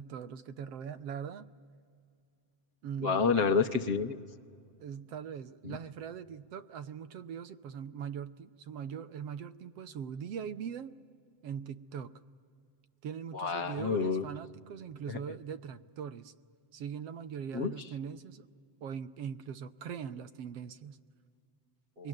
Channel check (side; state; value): left; late; 7.7 ms